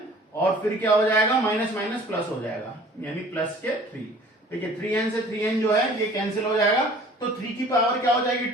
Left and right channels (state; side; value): normal; both; correlation 0.49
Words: और फिर क्या हो जाएगा माइनस माइनस प्लस हो जाएगा यानी प्लस के 3। देखिए 3n से 3n जो है ये कैंसिल हो जाएगा तो 3 की पावर क्या हो जाएगी